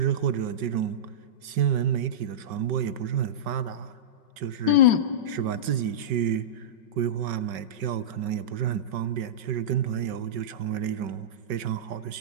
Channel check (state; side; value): late; left; 5.4 ms